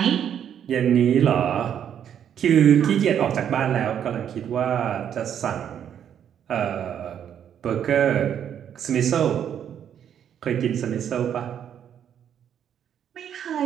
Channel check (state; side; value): quieter; left; 9.2 dB